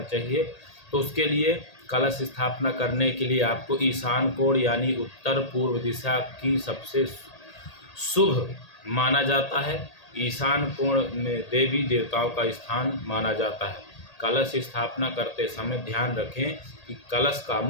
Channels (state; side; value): late; right; 1.8 ms